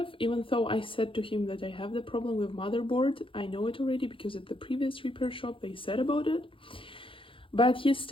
even though I said to him that I have the problem with motherboard. I know it already because at the previous repair shop they said about it. But he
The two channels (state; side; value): late; right; 0.25 ms